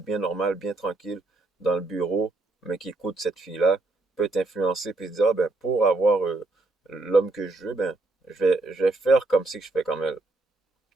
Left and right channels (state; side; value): quieter; left; 3.1 dB